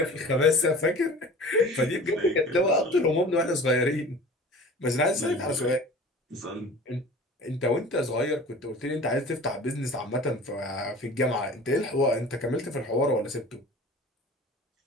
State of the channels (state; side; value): normal; both; correlation 0.41